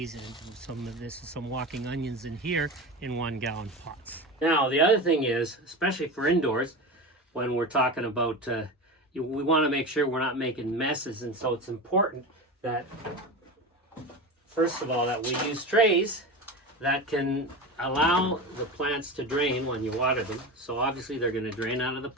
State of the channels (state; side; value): normal; both; correlation 0.25